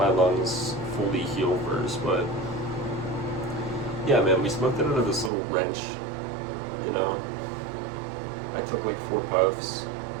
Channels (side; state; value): left; drops out; at 5.3 s